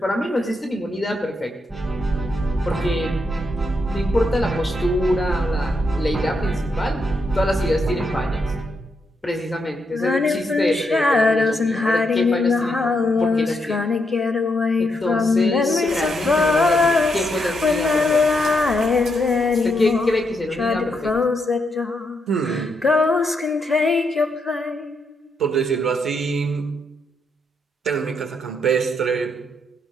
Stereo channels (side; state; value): both; normal; correlation 0.80